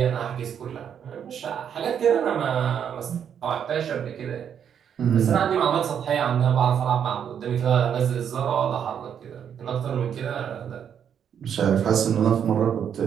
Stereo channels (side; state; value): left; quieter; 8.4 dB